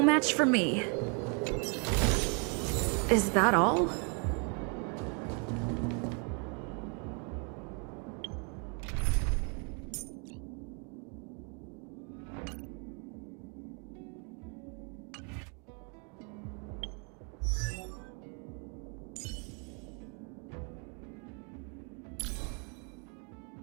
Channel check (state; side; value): quieter; left; 36.8 dB